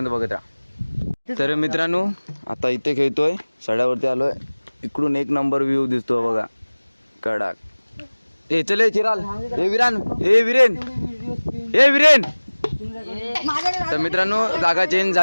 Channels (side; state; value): both; inverted; correlation -1.00